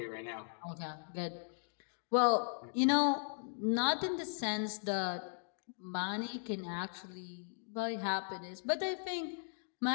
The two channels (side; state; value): right; silent; digital silence